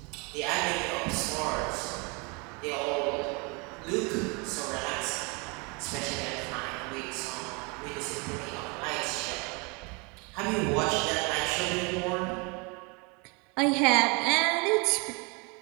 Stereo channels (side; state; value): left; quieter; 30.3 dB